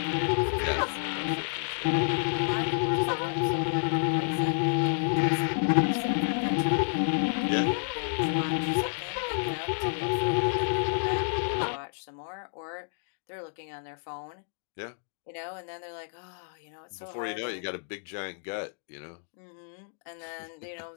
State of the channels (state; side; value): silent; right; 58 dB below the other